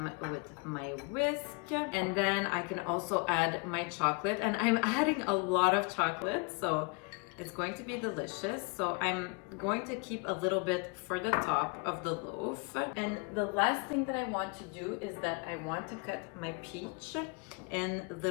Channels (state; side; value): quieter; right; 32.8 dB